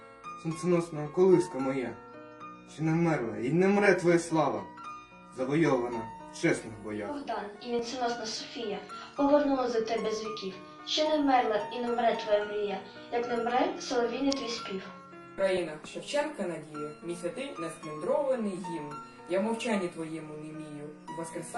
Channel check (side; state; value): both; identical; correlation 1.00